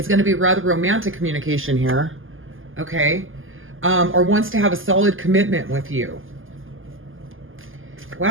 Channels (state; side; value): late; left; 0.59 ms